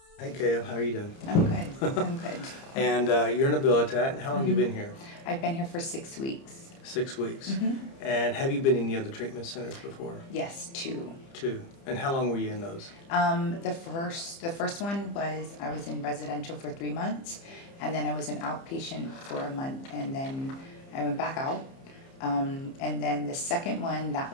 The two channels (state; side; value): late; right; 30 ms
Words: Hey, Kale, how are you doing? I'm good. I'm good. And you're an habilitat. How long have you been here? I've been here for 6 weeks. 6 weeks. And have you been in any other treatment centers before? Yes, 2. 2. And how long were you in those? The first one was I was in residential for 3 months, and then I was an outpatient for a month, and then I went back out. And then the second one, that